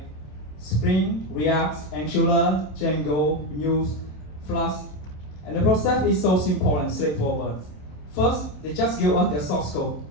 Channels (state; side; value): late; right; 27 ms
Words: Spring, React, Angular, Django, Vue, Flask. And the process is so simple and straightforward. First, they just give us their source code.